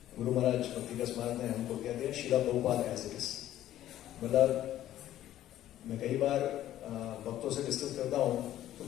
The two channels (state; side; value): quieter; right; 12.9 dB